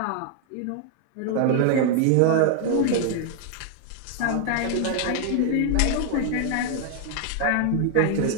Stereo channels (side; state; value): both; different; correlation 0.00